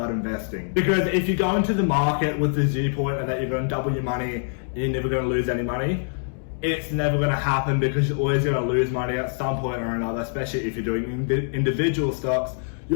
investing. Because if you go into the market with the viewpoint that you're going to double your money and you're never going to lose any money, it's never going to happen, because you're always going to lose money at some point or another, especially if you're doing individual stocks.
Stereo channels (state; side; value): silent; right; 62 dB below the other